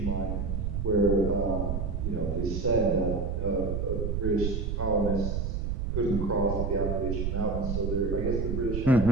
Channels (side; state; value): right; noise; rumble, 1 dB below the sound